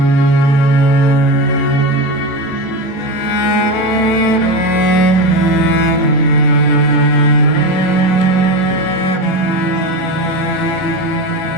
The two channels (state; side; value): normal; both; correlation 0.20